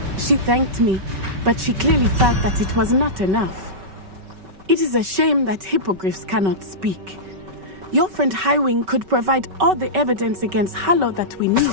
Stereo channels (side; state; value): left; late; 5.2 ms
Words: She thanked me, but she clearly felt that it was not enough. It is a shame that hippogriffs cannot speak. Your friend Highwing could provide all the evidence against Harlow that we need.